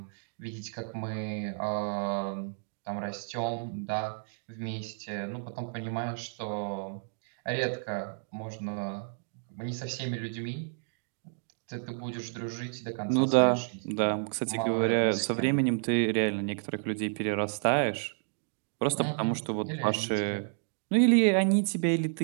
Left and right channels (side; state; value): left; silent; digital silence